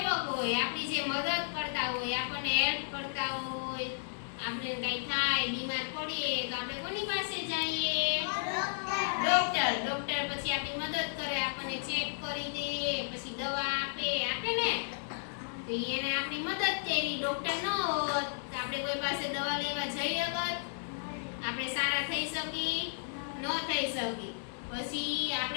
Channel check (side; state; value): right; silent; digital silence